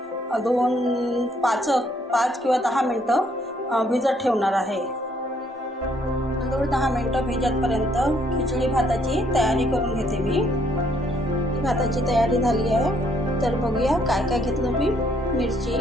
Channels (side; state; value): both; normal; correlation 0.68